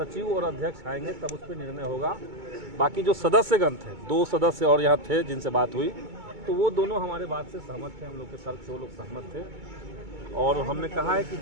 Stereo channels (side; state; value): left; late; 2.2 ms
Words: और अध्यक्ष आएंगे तब उस पर निर्णय होगा। बाकी जो सदस्यगण थे, 2 सदस्य और यहाँ थे जिनसे बात हुई, तो वो दोनों हमारे बात से सहमत थे, हम लोग के तर्क से वो लोग सहमत थे। और हमने कहा है कि